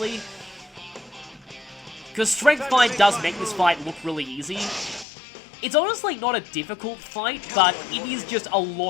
Because Strength Bind does make this fight look really easy. It's honestly not a difficult fight, but it is just a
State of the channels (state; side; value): drops out; right; at 5.1 s